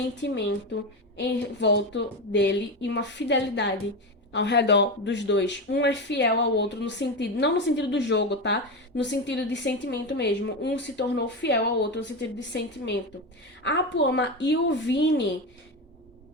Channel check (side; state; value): both; normal; correlation 0.17